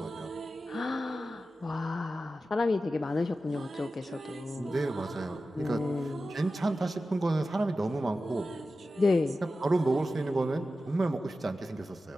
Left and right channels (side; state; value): both; normal; correlation 0.93